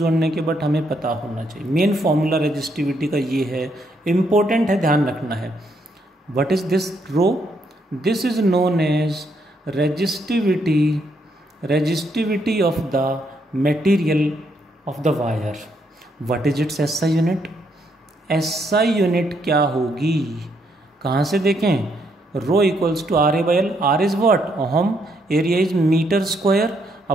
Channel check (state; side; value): normal; both; correlation 0.75